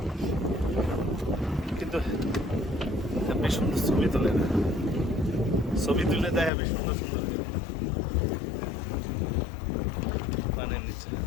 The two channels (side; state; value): right; drops out; at 6.5 s